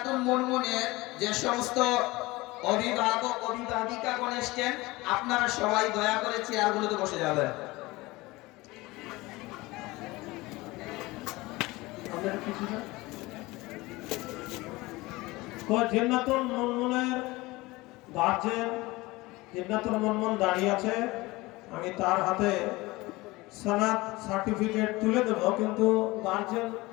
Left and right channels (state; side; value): quieter; right; 21.2 dB